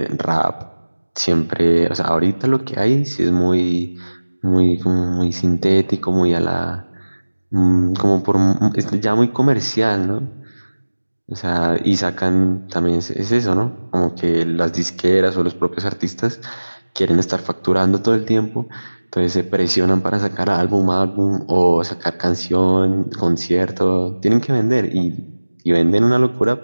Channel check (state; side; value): inverted; both; correlation -1.00